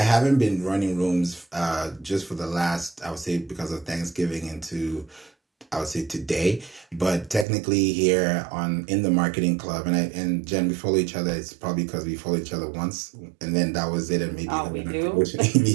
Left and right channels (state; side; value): drops out; left; at 7.5 s